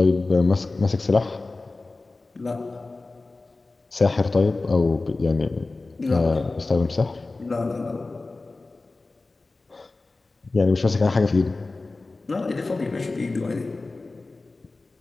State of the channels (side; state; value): right; quieter; 3.4 dB